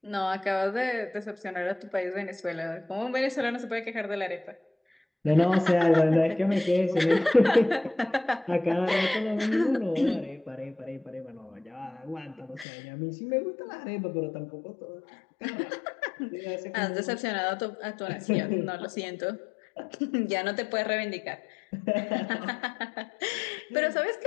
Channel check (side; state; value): right; drops out; at 12.7 s